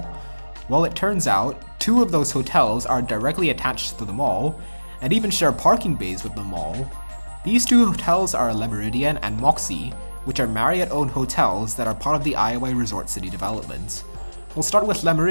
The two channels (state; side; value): inverted; both; correlation -1.00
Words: Well, it turns out 2 of those hotels are directly attached to the mall, and even share parking bays with the mall. These 2 hotels are Le Meridien and Moxy, which are Marriott-owned hotels that are part of the iOi Resort City development. We'll start with Le